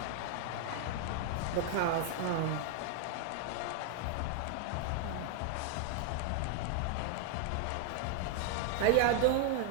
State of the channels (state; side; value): different; both; correlation 0.00